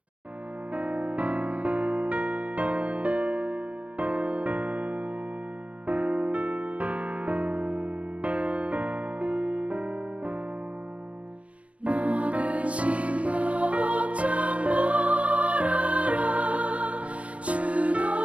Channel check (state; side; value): late; left; 0.064 ms